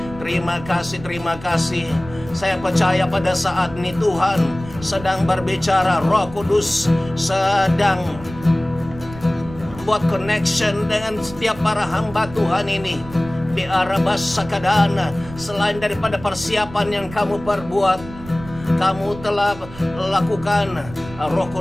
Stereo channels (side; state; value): right; noise; rumble, 16 dB below the sound